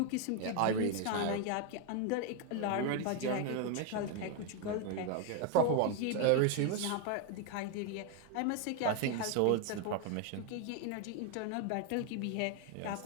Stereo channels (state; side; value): different; both; correlation 0.01